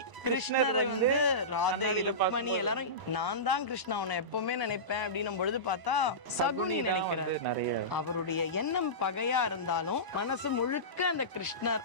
கிருஷ்ணரை வந்து ராதை, ருக்மணி எல்லாரும் நான் தான் கிருஷ்ணா உன்னை எப்பவுமே நினைப்பேன் அப்படின்னும் பொழுது பார்த்தா சகுனி நினைக்கிறாரு. அவருடைய எண்ணம் பகையா இருந்தாலும் மனசு முழுக்க அந்த கிருஷ்ணர்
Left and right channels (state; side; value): late; left; 1.0 ms